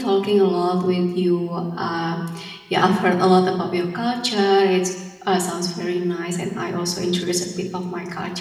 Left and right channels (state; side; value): identical; both; correlation 1.00